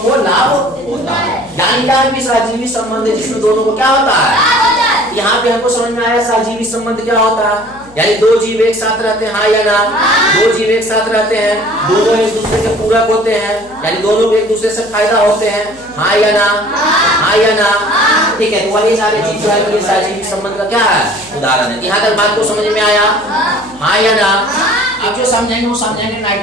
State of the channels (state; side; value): noise; left; hum, 24 dB below the sound